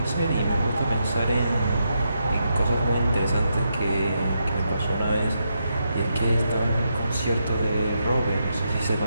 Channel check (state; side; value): inverted; both; correlation -0.82